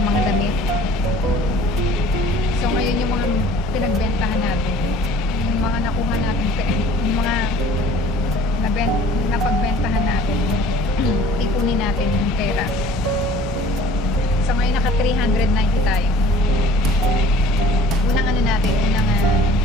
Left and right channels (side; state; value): both; normal; correlation 0.50